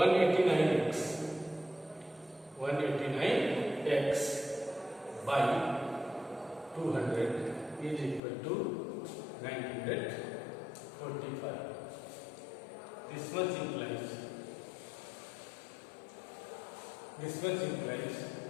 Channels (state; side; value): drops out; right; at 8.2 s